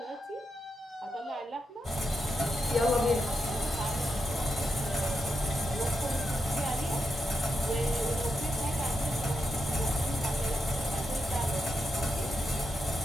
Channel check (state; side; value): normal; both; correlation 0.85